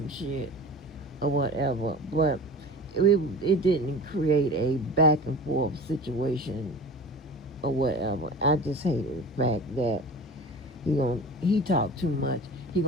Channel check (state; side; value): normal; both; correlation 0.36